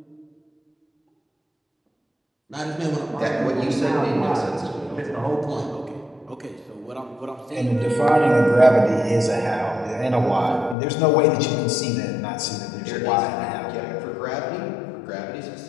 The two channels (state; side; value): drops out; right; at 10.8 s